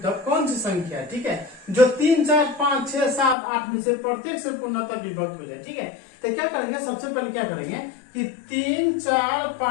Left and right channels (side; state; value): right; drops out; at 3.4 s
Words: कौन सी संख्या है, ठीक है, जो 3 4 5 6 7 8 में से प्रत्येक से पूर्णतः विभक्त हो जाए। ठीक है, तो क्या करेंगे, सबसे पहले क्या करेंगे कि 3 4